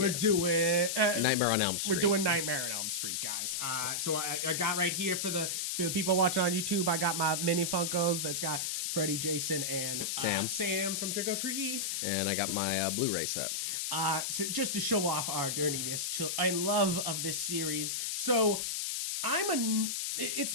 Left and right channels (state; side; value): noise; left; hiss, 1 dB below the sound